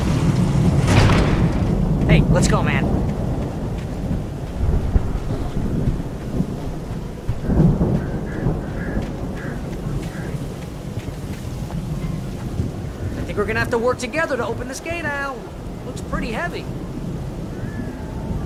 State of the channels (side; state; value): both; identical; correlation 1.00